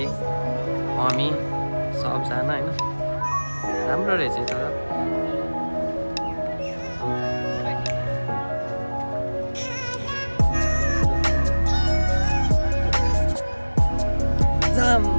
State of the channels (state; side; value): inverted; both; correlation -1.00